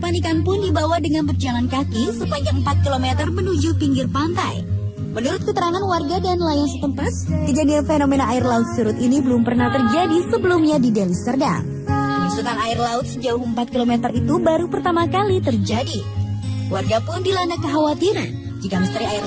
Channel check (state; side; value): identical; both; correlation 1.00